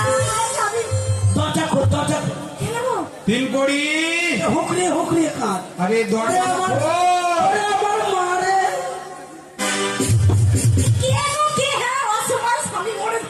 স্বামী, দরজা খোল দরজা খোল। কেন গো? তিনকড়ি হুকরি হুকরি কাঁদ আরে দরজা খোল। আমার মারে কে গো, কে? হ্যাঁ, অসময় স্বামী মরে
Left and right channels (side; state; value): both; identical; correlation 1.00